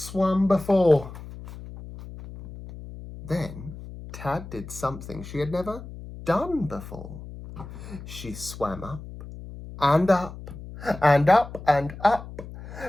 before. Then Tad did something she had never done before. She swam up and up and up and up.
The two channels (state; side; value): noise; left; hum, 13 dB below the sound